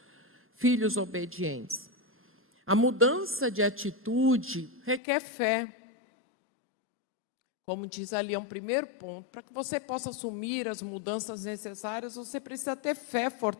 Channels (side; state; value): right; drops out; at 5.0 s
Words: filhos obedientes. A mudança de atitude requer fé. Como diz ali, é um primeiro ponto. Para que você possa assumir as mudanças necessárias, você precisa ter fé